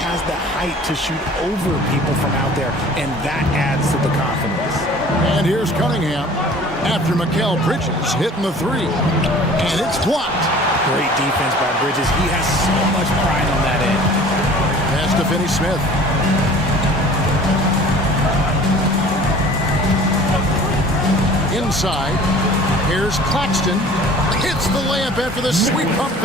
has the height to shoot over people from out there, and that adds to the confidence. And here's Cunningham after Mikal Bridges hitting the 3. And it's blocked. Great defense by Bridges. He has so much pride on that end. Pass to Finney-Smith. Inside. Here's Claxton. Hits the layup after the sweep pump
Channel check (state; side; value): normal; both; correlation 0.47